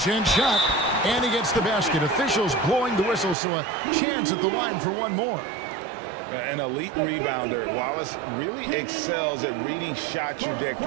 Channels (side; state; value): left; drops out; at 3.4 s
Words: shot. And he gets the basket. Officials blowing the whistle, so a chance at the line for one more. An elite rebounder. Wallace really excels at reading shot